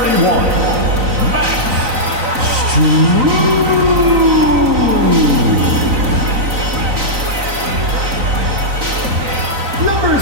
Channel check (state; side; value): late; left; 3.9 ms